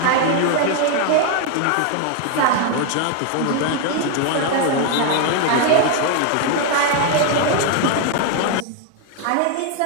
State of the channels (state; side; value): different; both; correlation 0.01